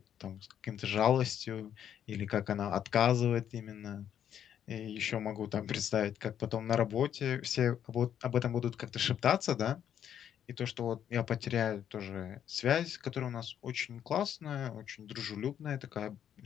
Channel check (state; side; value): quieter; right; 9.5 dB